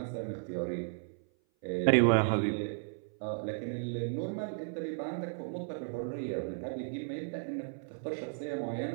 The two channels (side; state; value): left; silent; 55 dB below the other